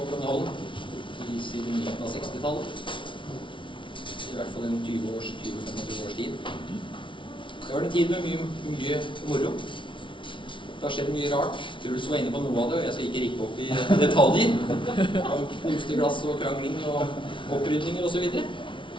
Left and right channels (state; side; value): late; right; 0.24 ms